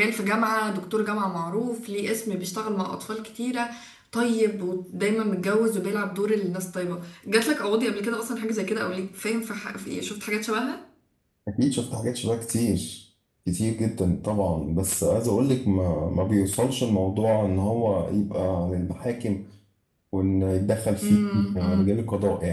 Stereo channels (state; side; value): identical; both; correlation 1.00